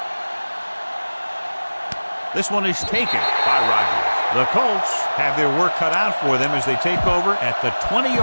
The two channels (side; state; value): both; inverted; correlation -1.00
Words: This one is taken by Rodgers. The Colts have their work cut out for them as they take over at the